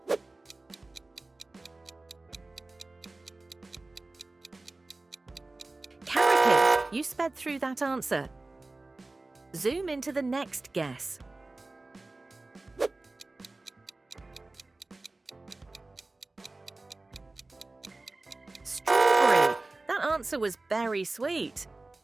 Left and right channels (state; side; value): quieter; left; 3.1 dB